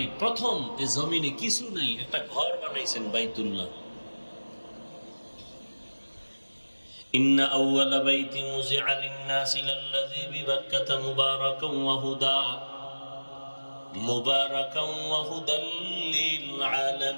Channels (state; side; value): inverted; both; correlation -1.00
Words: প্রথম এই জমিনে কিছু নাই, একটা ঘর বানাইছেন, বাইতুল্লাহ। ইন্না আউওয়ালা বাইতিন উযিআ লিন-নাসি লাল্লাযী বিবাক্কাতা মুবারাকান ওয়া হুদা মুবারাকান ওয়া হুদাল লিল